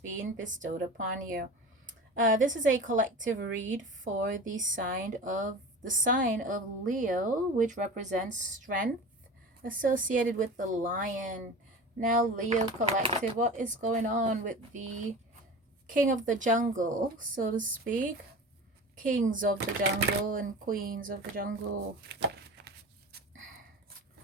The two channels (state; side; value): normal; both; correlation 0.34